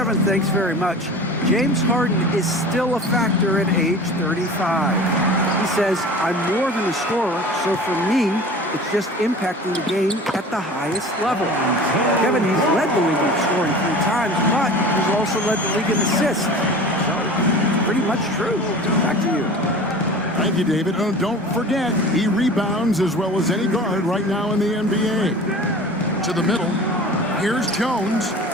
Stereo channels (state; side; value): normal; both; correlation 0.39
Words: thanks very much. James Harden is still a factor at age 35. He says, I'm more than a scorer, so for me, it's just impacting the game at the highest level. Kevin, he's led the league in scoring 3 times, but he's also led the league in assists. So, it's pretty much true. Back to you. Thank you, David. Oh, don't forget, he rebounds as well as any guard right now in the NBA. To the middle. Here's Jones.